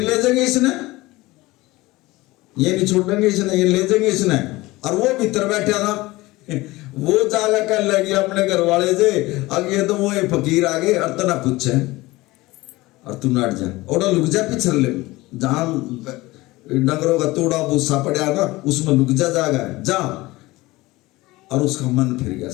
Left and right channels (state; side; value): quieter; right; 20.0 dB